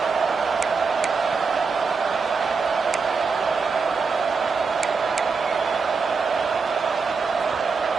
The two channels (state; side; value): quieter; left; 4.9 dB